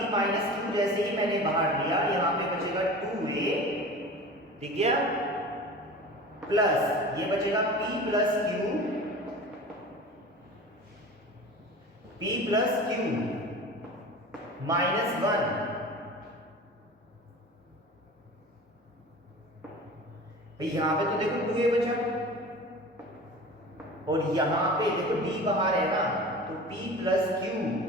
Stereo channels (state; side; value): normal; both; correlation 0.36